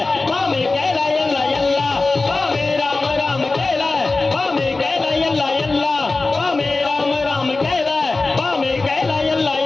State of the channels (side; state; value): right; quieter; 3.5 dB